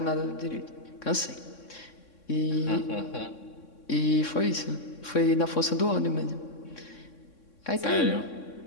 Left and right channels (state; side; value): late; right; 3.6 ms